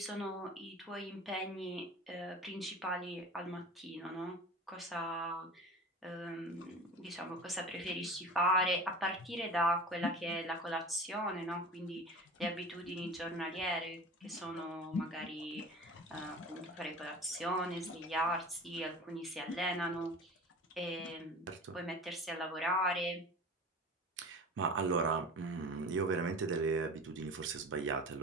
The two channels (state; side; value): normal; both; correlation 0.36